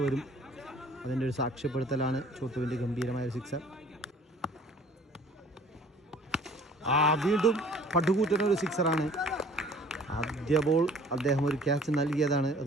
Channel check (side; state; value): both; normal; correlation 0.52